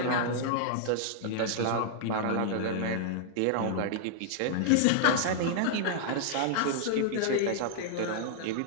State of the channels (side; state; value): both; different; correlation -0.01